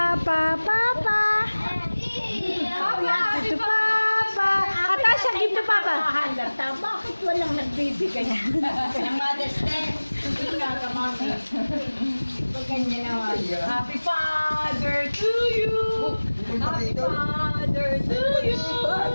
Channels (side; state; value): both; inverted; correlation -1.00